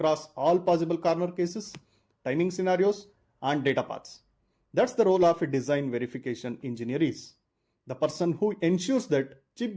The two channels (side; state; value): both; identical; correlation 1.00